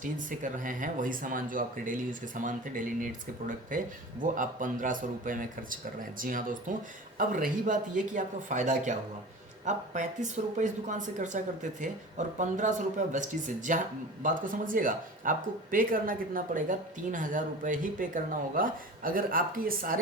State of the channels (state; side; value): normal; both; correlation 0.36